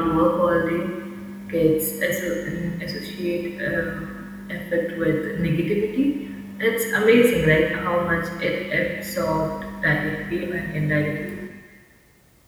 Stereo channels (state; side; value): identical; both; correlation 1.00